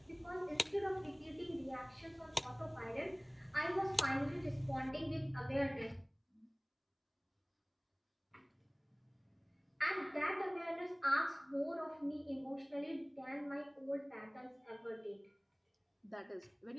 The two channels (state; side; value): identical; both; correlation 1.00